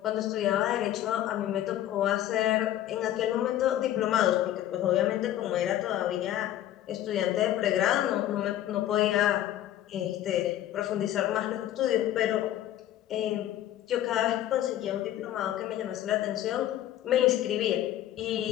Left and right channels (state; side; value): quieter; right; 12.7 dB